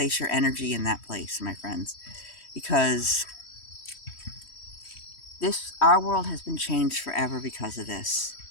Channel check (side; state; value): right; late; 3.1 ms